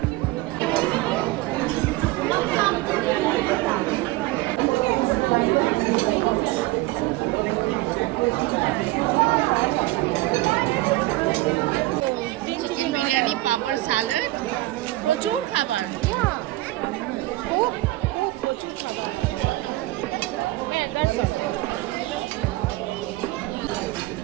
চিকেন বিরিয়ানি, পাপড়, স্যালাড, প্রচুর খাবার।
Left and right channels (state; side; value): quieter; left; 18.8 dB